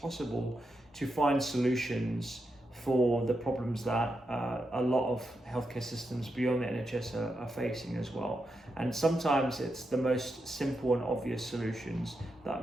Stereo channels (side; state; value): both; normal; correlation 0.86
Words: to find solutions for the problems that a lot of healthcare systems beyond the NHS are facing as well. And sometimes it's the most simple and obvious solutions that are